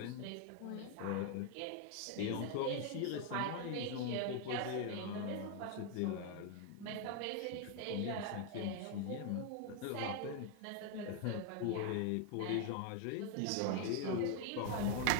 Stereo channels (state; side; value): different; both; correlation 0.01